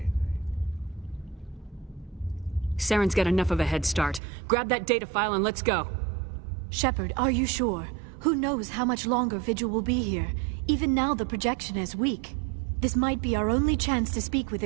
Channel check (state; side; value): drops out; left; at 4.2 s